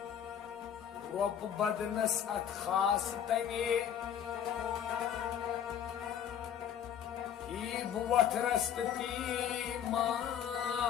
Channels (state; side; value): quieter; right; 9.2 dB